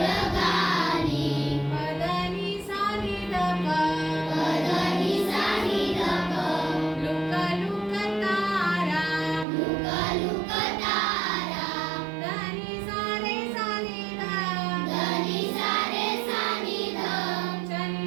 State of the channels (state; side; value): drops out; left; at 9.5 s